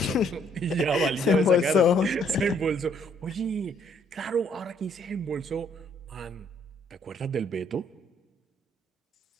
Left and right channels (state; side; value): normal; both; correlation 0.66